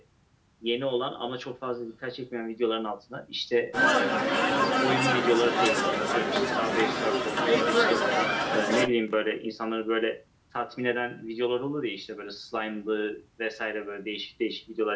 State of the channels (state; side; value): identical; both; correlation 1.00